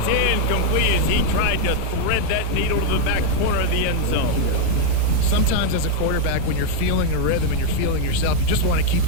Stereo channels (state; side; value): different; both; correlation 0.00